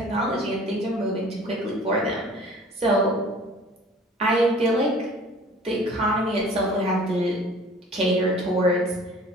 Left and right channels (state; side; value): normal; both; correlation 0.48